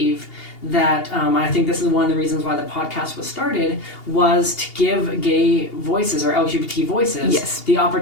that I think this is one of the reasons why the podcast was started, was to give gay voices or LGBT voices the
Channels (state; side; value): late; right; 2.8 ms